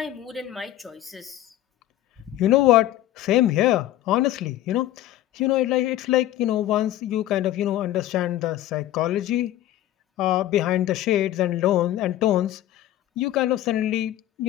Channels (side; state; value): right; quieter; 13.7 dB